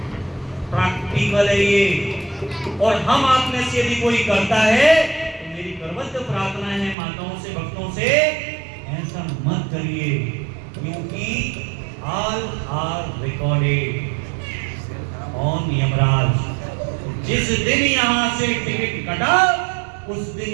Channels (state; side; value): drops out; left; at 7.0 s